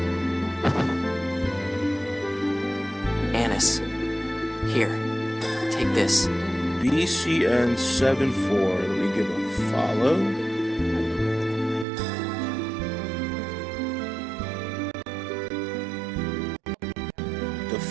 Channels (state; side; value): drops out; left; at 11.9 s